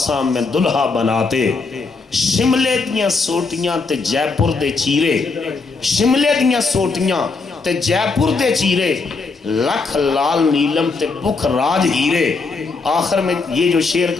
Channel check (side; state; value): right; quieter; 4.2 dB